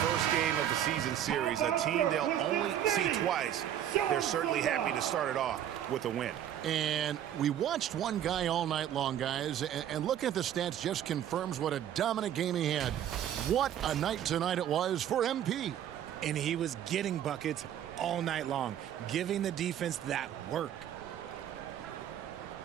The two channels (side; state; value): left; quieter; 10.6 dB